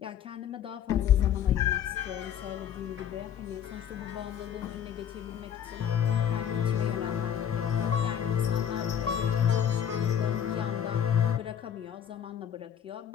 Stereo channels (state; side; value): quieter; right; 9.2 dB